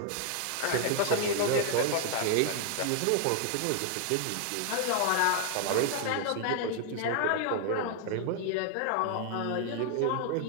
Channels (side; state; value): both; different; correlation 0.00